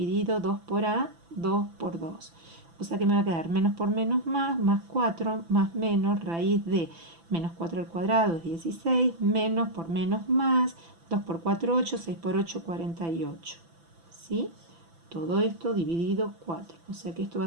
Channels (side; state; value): left; late; 6.0 ms